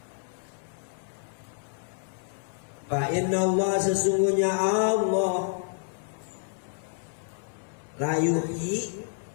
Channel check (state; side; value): silent; right; 59 dB below the other